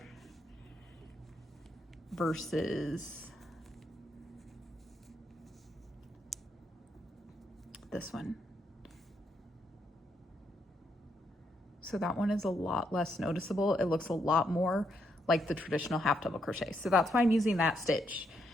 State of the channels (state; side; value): normal; both; correlation 0.77